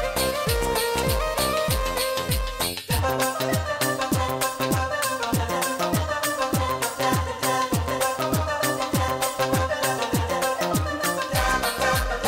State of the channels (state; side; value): identical; both; correlation 1.00